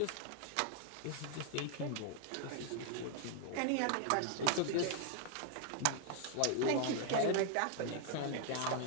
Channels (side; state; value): both; different; correlation 0.00